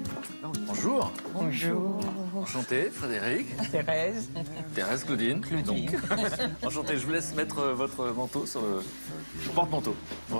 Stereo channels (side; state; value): both; inverted; correlation -1.00